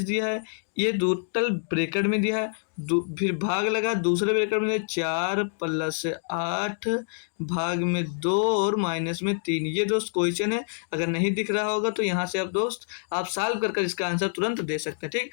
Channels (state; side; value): silent; right; digital silence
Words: दिया है, ये टोटल ब्रैकेट में दिया है। फिर भाग लगा दूसरे ब्रैकेट में 4 प्लस 8 भाग में 2 और माइनस में 3। ये दोस्त क्वेश्चन है, अगर नहीं दिख रहा होगा तो यहाँ से आप दोस्त आप सॉल्व कर कर इसका आंसर तुरंत दे सकते हैं। ठीक,